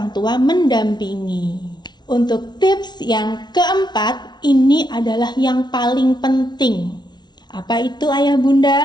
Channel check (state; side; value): late; right; 0.20 ms